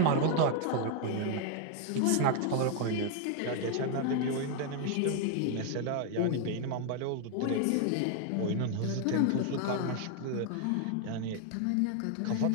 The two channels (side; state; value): both; different; correlation 0.00